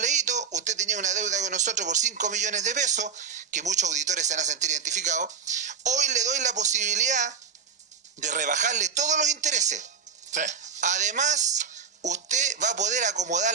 usted tenía una deuda con nosotros por 5 millones de pesos, que muchos auditores se van a sentir identificados, hoy le doy la posibilidad de rebajarle todos los intereses. Sí. Además, usted va a poder acomodar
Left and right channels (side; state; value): left; quieter; 6.6 dB